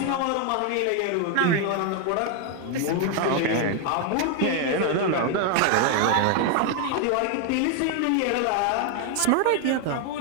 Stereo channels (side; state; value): both; different; correlation 0.01